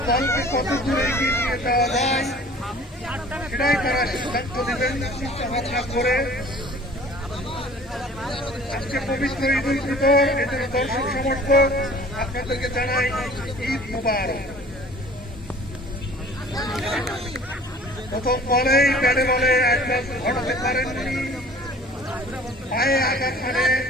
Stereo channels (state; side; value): normal; both; correlation 0.48